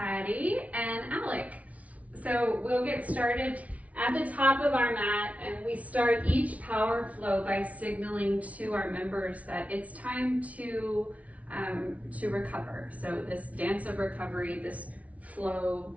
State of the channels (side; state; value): left; late; 0.067 ms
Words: and Alec. So we'll get started at the top of our mat, and we start each power flow by signaling to our members that it's time to recover. So this dance of recovery, this flow,